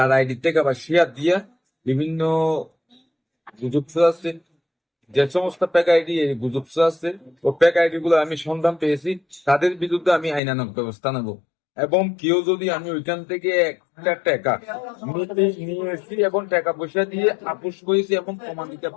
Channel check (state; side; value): drops out; right; at 10.4 s